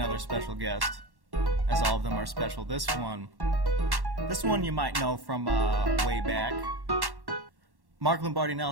special guest, as all of them are special. This one you might know from way back. Mark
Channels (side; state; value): left; late; 1.1 ms